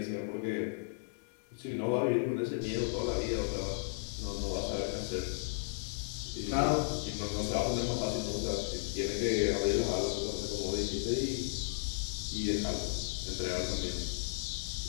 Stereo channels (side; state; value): right; silent; digital silence